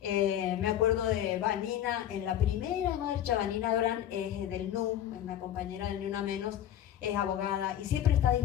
Me acuerdo de Vanina, en la primera marcha. Vanina Brand es del NU, es una compañera del Ni Una Menos, es abogada y siempre está a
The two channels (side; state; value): right; quieter; 11.1 dB